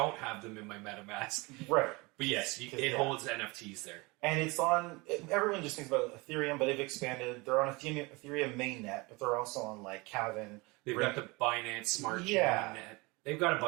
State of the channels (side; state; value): left; quieter; 25.2 dB